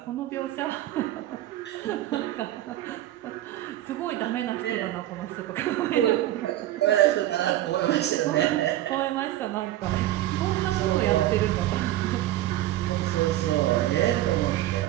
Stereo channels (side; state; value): left; quieter; 14.4 dB